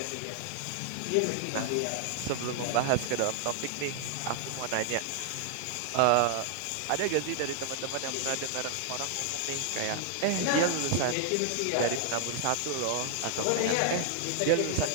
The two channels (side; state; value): both; different; correlation 0.00